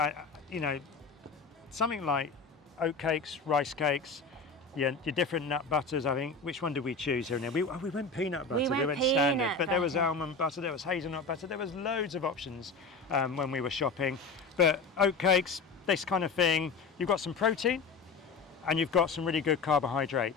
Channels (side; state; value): right; quieter; 4.3 dB